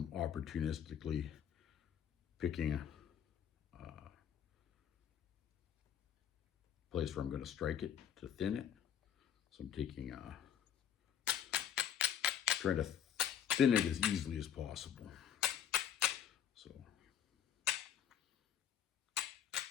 opportunistically picking a place where I'm going to strike it to thin it. So I'm taking trying to thin it as easily as possible. So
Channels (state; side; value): quieter; right; 9.3 dB